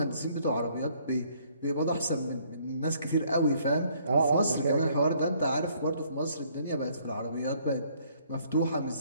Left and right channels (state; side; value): inverted; both; correlation -0.64